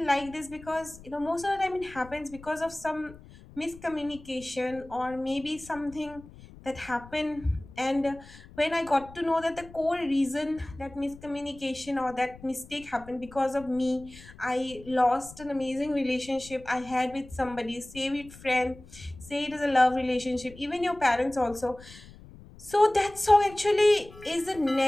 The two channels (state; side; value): noise; left; rumble, 19 dB below the sound